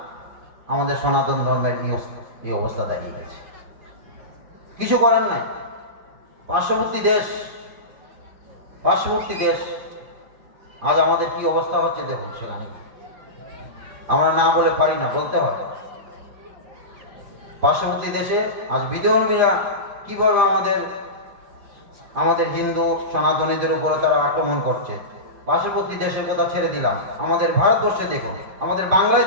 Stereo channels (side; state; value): left; late; 5.0 ms